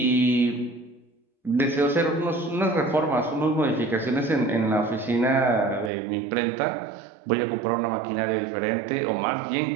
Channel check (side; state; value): left; drops out; at 5.9 s